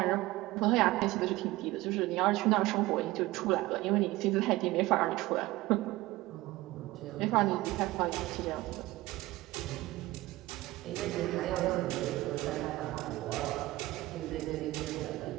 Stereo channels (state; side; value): quieter; left; 18.5 dB